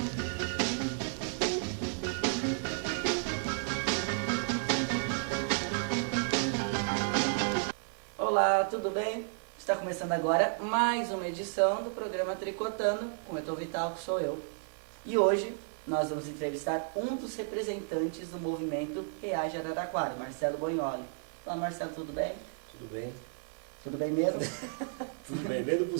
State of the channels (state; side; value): silent; left; digital silence